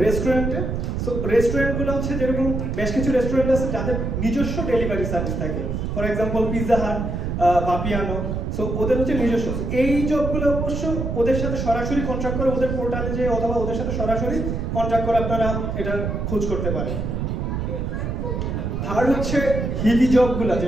রেস্টুরেন্টে, সো রেস্টুরেন্টগুলো হচ্ছে যেরকম বেশ কিছু রেস্টুরেন্ট আছে যাদের নিজস্ব ডেলিভারি সার্ভিস থাকে, for example Pizza Hut, বাপিয়ানো, so ওদের হচ্ছে নিজস্ব। এই জবগুলো অবশ্য ওদের সাথে সরাসরি কন্ট্রাক্ট করে, ওদের পোর্টালে যে অথবা ওদের সাথে সরাসরি কন্ট্রাক্ট করে আপনারা এটা খোঁজ করতে পারেন। থার্ড হচ্ছে হিলি জবগুলো,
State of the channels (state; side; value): noise; right; rumble, 2 dB below the sound